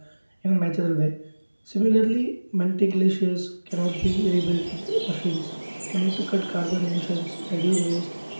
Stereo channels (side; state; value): both; inverted; correlation -1.00